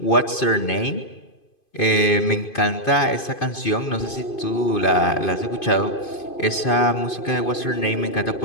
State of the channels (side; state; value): right; late; 2.5 ms